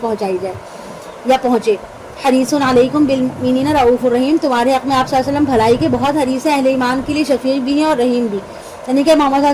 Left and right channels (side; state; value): both; identical; correlation 1.00